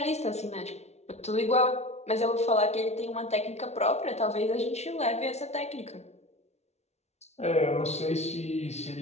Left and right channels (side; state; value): right; late; 0.31 ms